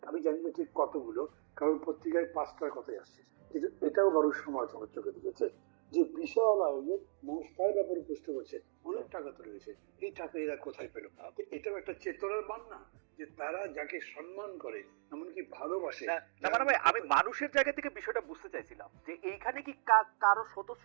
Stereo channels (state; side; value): silent; left; digital silence